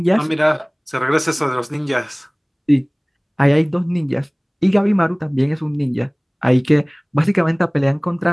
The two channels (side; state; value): both; identical; correlation 1.00